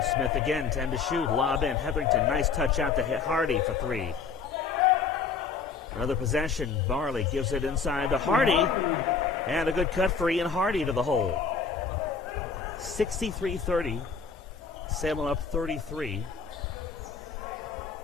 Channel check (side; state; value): right; quieter; 5.5 dB